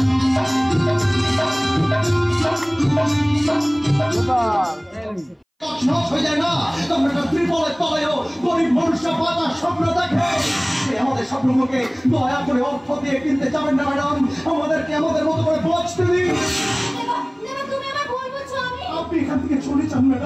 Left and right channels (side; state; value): both; identical; correlation 1.00